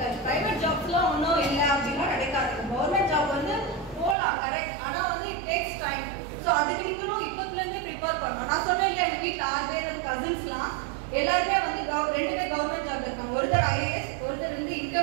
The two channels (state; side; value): drops out; left; at 4.2 s